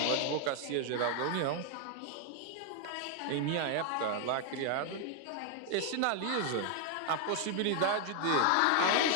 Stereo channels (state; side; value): different; both; correlation 0.00